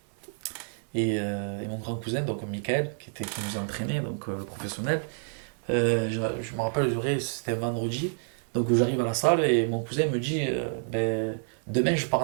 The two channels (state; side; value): silent; left; 59 dB below the other